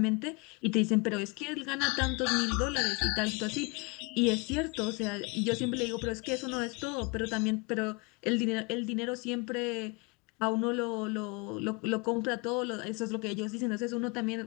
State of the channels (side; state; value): right; quieter; 29.0 dB